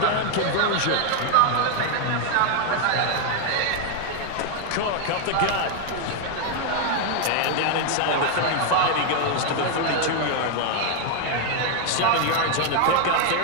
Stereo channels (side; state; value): both; different; correlation 0.01